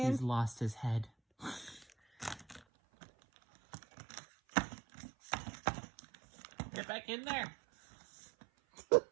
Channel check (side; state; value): left; drops out; at 2.6 s